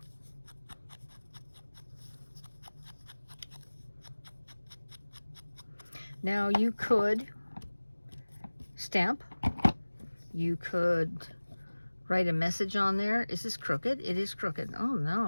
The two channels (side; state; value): both; inverted; correlation -1.00